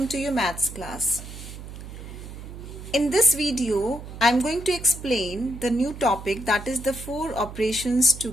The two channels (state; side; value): noise; right; hum, 12 dB below the sound